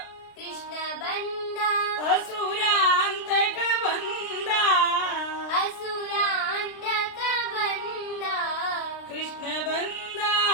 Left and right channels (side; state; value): right; late; 30 ms